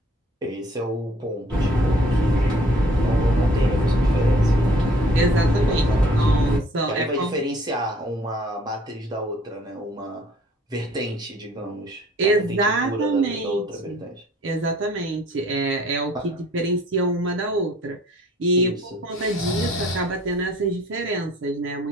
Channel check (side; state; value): both; normal; correlation 0.56